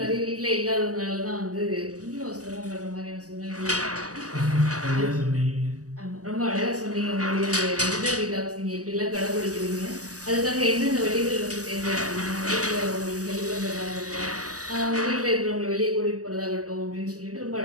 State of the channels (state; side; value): late; left; 0.66 ms